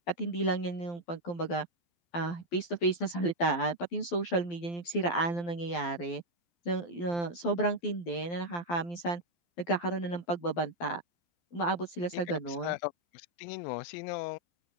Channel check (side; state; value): right; late; 12 ms